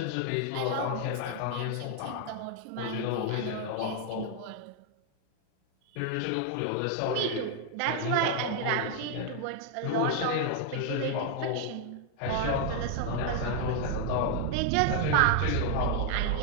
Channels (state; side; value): different; both; correlation 0.00